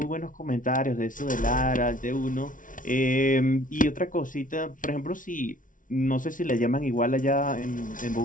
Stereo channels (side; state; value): right; late; 0.38 ms